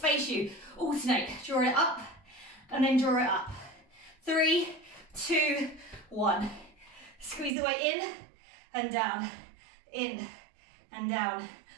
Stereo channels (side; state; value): left; drops out; at 7.6 s